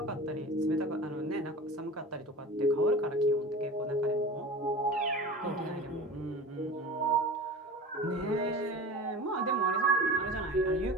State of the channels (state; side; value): normal; both; correlation 0.35